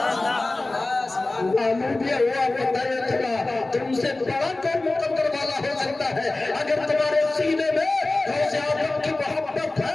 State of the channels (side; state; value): right; quieter; 3.0 dB